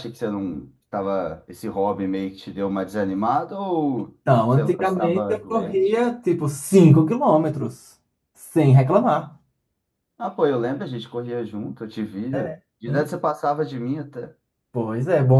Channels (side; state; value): both; identical; correlation 1.00